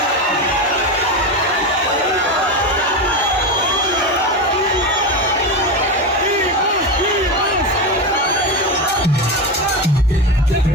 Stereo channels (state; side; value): normal; both; correlation 0.17